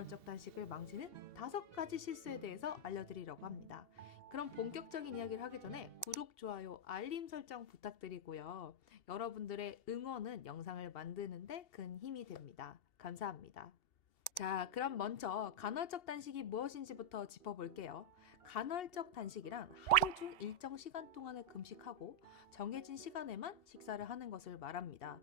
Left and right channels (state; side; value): late; right; 2.7 ms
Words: 단식을 망치는 5가지 실수에 대해서 알려드리려고 합니다. 그럼 본격적인 이야기를 하기 전에 구독, 좋아요, 알림 설정 부탁드리고요. 여러분들의 응원은 영상을 만드는데 큰 힘이 됩니다. 감사합니다. 자, 그럼 먼저 간헐적 단식이 무엇인지부터 짚어볼게요. 간헐적 단식이란 하루 중 일정 시간 동안을 금식하고 정해진 시간에만 식사를 하는 것을 말합니다.